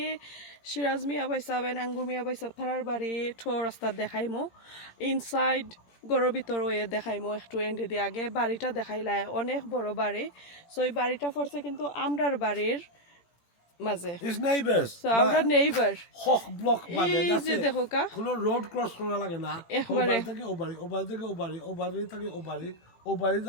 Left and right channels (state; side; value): late; right; 18 ms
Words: সিরাজ মিয়া বাইসাবেন আঙ্গুর মিয়া বাইসাব থারার বাড়ি ঠো রাস্তা দেখাইমো ইনসাইড গড়ের ভিতর ওয়ে দেখাইমো একটু এন্ডে দিয়ে আগে বাড়িটা দেখাইলাই অনেক বড় বাড়ি সো এই বাড়িটা পড়ছে কিন্তু আমরার বাড়ির মাঝে His neighbors. সো আমরা নেইবার হক ব্লক মানে এই যে দেখো কা কোনো রোড ক্রস করা লাগে না একবারে থেকে ওবাড়ি ওবাড়ি থেকে ওবাড়ি ওবাড়ি থেকে ওবাড়ি ওবাড়ি